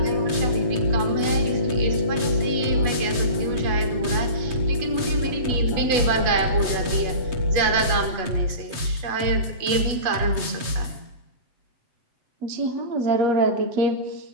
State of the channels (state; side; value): late; left; 7.8 ms